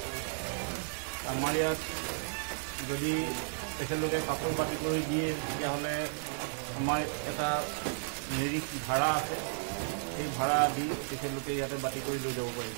আমাৰ ইয়াত যদি তেখেতলোকে কাপোৰ বাতি কৰি দিয়ে, তেতিয়াহ'লে আমাৰ এটা নিৰিখ ভাড়া আছে, সেই ভাড়া দি তেখেতলোকে ইয়াতে বাতি কৰি লৈ যাব পাৰিব।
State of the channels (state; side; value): silent; left; 55 dB below the other